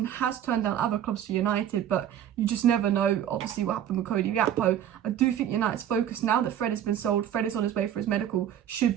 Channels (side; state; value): left; quieter; 10.3 dB